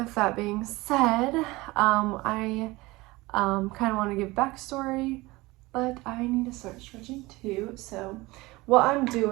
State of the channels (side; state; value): left; quieter; 21.3 dB